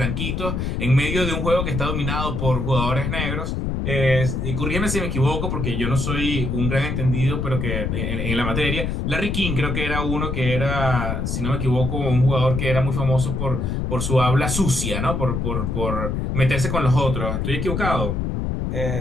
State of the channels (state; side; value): noise; left; rumble, 1 dB below the sound